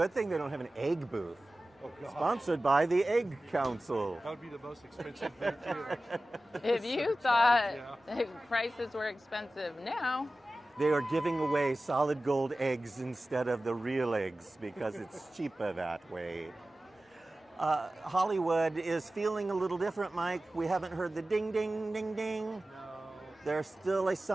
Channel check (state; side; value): normal; both; correlation 0.96